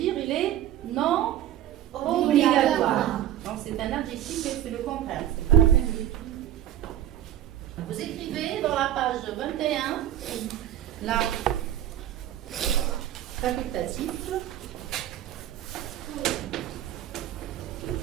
il est non obligatoire. Donc, c'est un adjectif et c'est le contraire. C'est pas la peine de l'écrire. Vous écrivez dans la page 21, là, facultatif.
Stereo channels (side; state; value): left; quieter; 11.8 dB